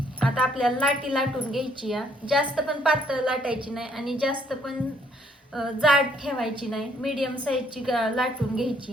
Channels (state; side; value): normal; both; correlation 0.67